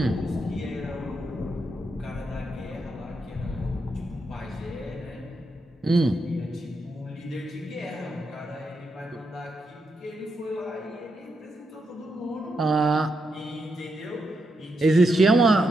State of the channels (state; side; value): normal; both; correlation 0.83